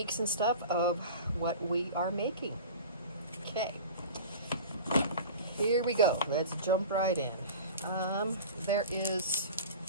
and stuff of what we are making. Okay, here we go. Let's jump right in. There is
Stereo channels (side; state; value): both; inverted; correlation -0.36